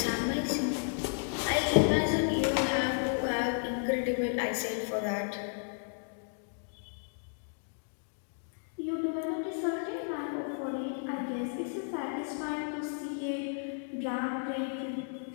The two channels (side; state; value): right; silent; digital silence